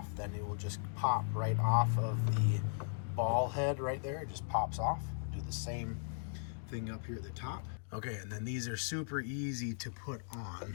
then it will just pop right off of the ball head right there. It just pops off. Do the same thing up here at the top. Okay, and then these are super easy to put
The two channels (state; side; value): silent; right; digital silence